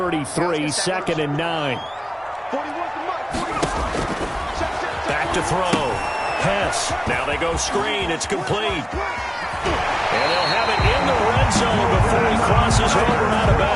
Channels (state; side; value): identical; both; correlation 1.00